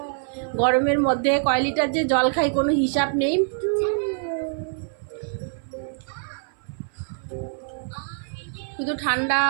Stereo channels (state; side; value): silent; left; 56 dB below the other